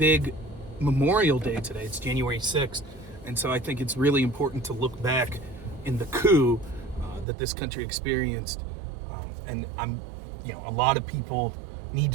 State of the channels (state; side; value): drops out; left; at 7.2 s